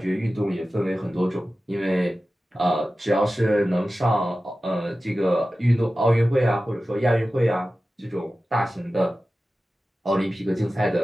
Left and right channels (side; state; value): both; normal; correlation 0.95